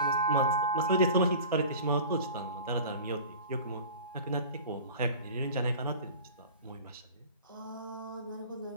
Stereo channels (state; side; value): inverted; both; correlation -0.38